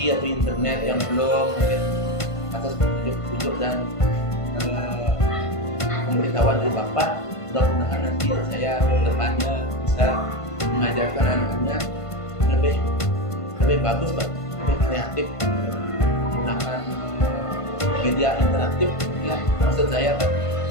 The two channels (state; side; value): late; right; 1.5 ms